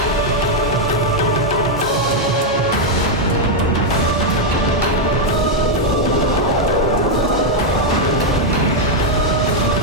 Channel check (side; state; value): both; normal; correlation 0.00